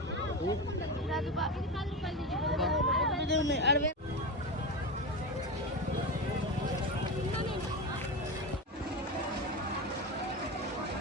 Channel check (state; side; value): normal; both; correlation 0.19